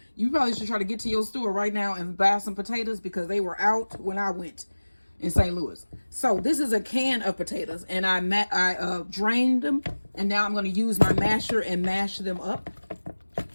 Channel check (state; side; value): inverted; both; correlation -1.00